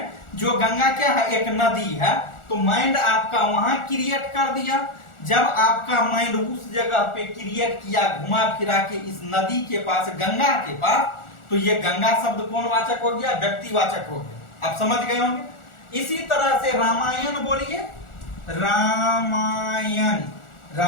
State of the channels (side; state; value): right; late; 1.4 ms